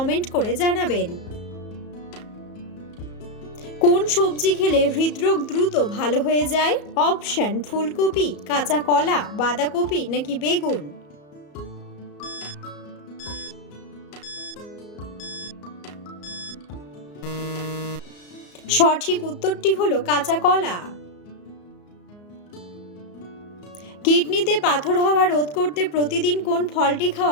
করে জানাবেন। কোন সবজি খেলে হৃদরোগ দ্রুত ভালো হয়ে যায়? অপশন: ফুলকপি, কাঁচা কলা, বাঁধাকপি নাকি বেগুন। সঠিক উত্তরটি হলো কাঁচা কলা। কিডনিতে পাথর হওয়া রোধ করতে প্রতিদিন কোন ফলটি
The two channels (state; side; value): late; right; 34 ms